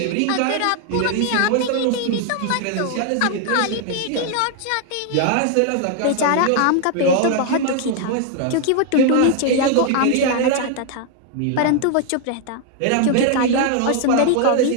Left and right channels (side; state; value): both; different; correlation 0.00